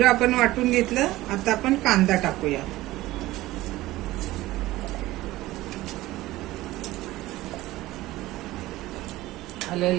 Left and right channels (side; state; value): left; quieter; 17.4 dB